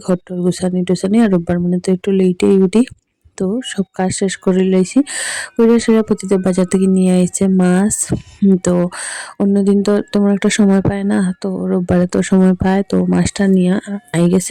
ঘর টর গুছানি টুছানি, আর রোববার মানে তো একটু লেটেই উঠি। তো সব কাজ শেষ করে লইছি। করে সেটা প্রতিদিন বাজার থেকে নিয়ে আইছে মাছ। তো অন্যদিন তো তেমন একটা সময় পায় না, তো রোববারে তো সময় পায়, তো মাছটা নিয়ে আই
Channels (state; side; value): identical; both; correlation 1.00